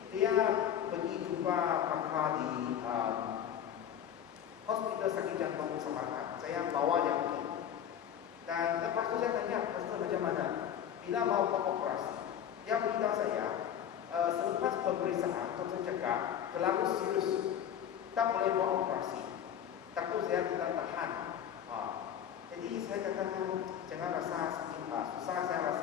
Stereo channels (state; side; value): quieter; right; 9.4 dB